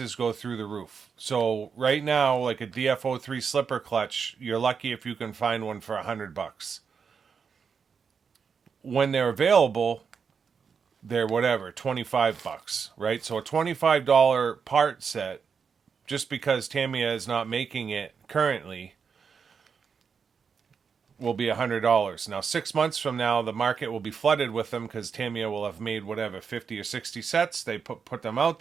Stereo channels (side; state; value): left; quieter; 6.1 dB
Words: go through the roof. So right now, like a DF03 slipper clutch, you're lucky if you can find one for $100. When they're available, they're whatever, $25, right? So a $25 part set, just because Tamiya is not making it currently, will be $100. Now, 6 months from now, the market will be flooded with them because Tamiya will have made whatever 50 or 60 sets. They put them out